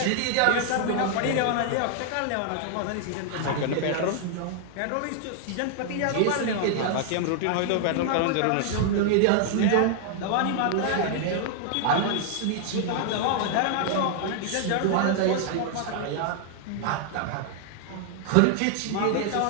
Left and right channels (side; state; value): both; different; correlation -0.01